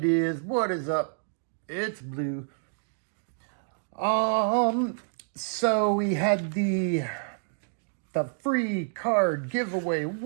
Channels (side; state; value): left; silent; digital silence